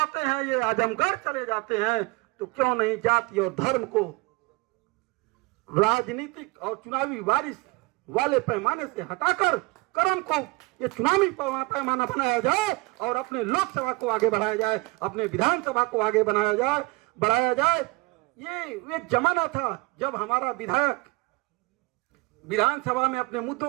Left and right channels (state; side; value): quieter; left; 25.0 dB